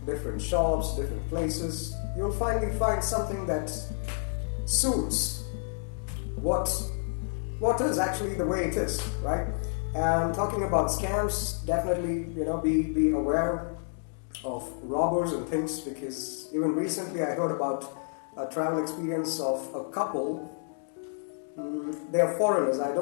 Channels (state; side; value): silent; right; digital silence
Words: different shops, different places. You'll finally find something that suits what is actually the way it is, right? And talking about scams, definitely, be aware of robbers and things, because even recently I heard about a travel experience of a couple. They are foreigners. I